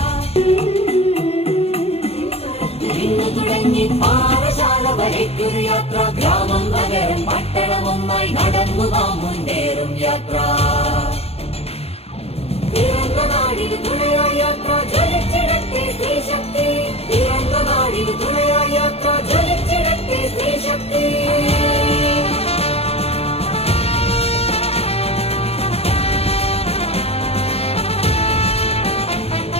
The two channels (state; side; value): late; right; 0.29 ms